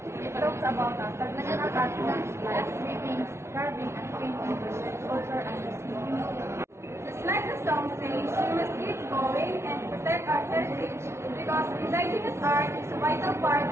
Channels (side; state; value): left; late; 0.13 ms